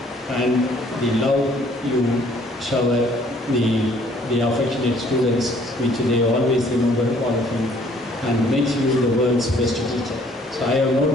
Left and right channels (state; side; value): normal; both; correlation 0.59